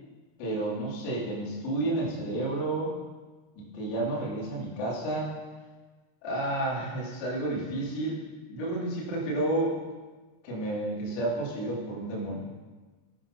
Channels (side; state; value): right; late; 33 ms